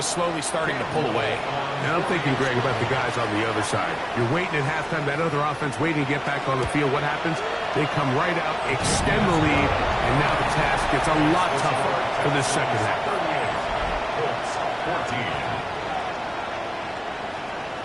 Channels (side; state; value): both; identical; correlation 1.00